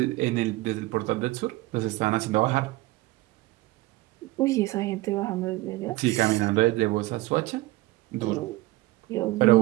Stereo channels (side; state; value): left; quieter; 19.4 dB